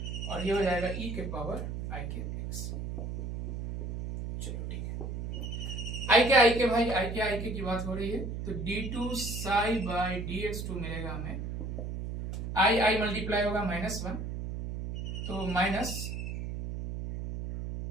और ये हो जाएगा e के पावर i के x। चलो ठीक है, i के भाई i के की बात हो रही है, तो d2 साई बाई dx2 मिलेगा हमें, i मल्टीप्लाई होगा -1, तो माइनस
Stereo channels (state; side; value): noise; right; hum, 5 dB below the sound